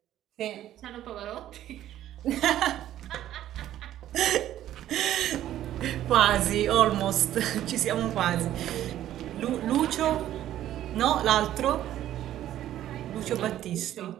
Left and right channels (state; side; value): quieter; left; 12.5 dB